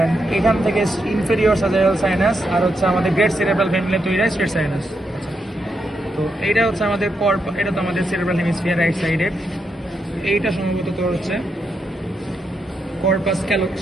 এখান থেকে ইনফেরিয়র স্যাজাইটাল সাইনাস, আর হচ্ছে আমাদের গ্রেট সেরেব্রাল ফ্যামিলি তৈরি হয় স্ট্রেট সাইনাস। তো এইটা হচ্ছে আমাদের এটা তো আমাদের সেরেব্রাল হেমিস্ফিয়ার রাইট সাইডের। এইটা সম্ভবত তোর হচ্ছে কর্পাস ক্যালো,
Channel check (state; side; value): normal; both; correlation 0.82